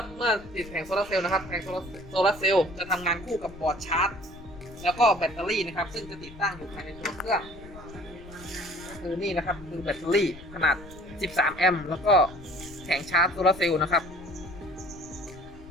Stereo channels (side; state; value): left; noise; rumble, 17 dB below the sound